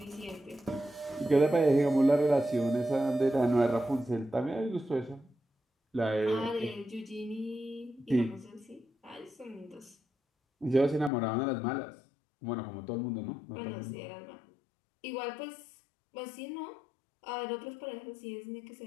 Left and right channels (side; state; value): right; drops out; at 11.1 s